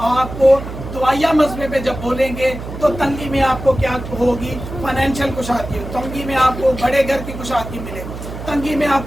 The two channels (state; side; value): noise; right; hum, 10 dB below the sound